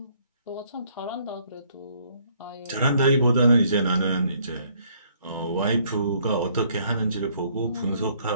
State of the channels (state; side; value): inverted; both; correlation -0.65